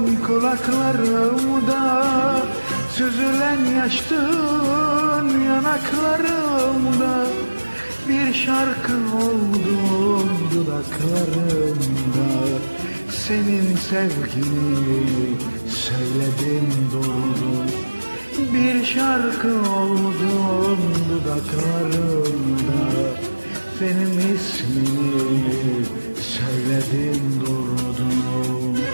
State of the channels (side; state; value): both; inverted; correlation -1.00